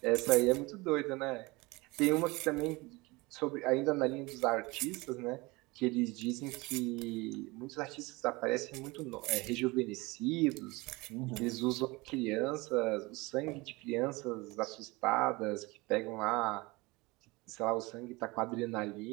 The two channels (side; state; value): left; quieter; 23.7 dB